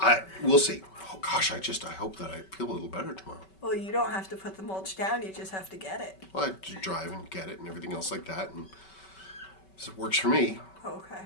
we'll see. Oh gosh, I hope that I feel a little better tomorrow. Well, you don't have to put the mulch down, you just have to get it. Well, I just drive and get it and everything else like that, and it works for me. Okay.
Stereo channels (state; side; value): late; right; 5.2 ms